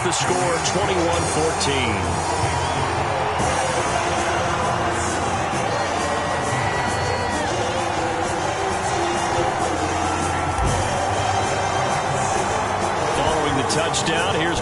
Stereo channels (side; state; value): both; identical; correlation 1.00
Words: the score 21-14. Touchdown. Here's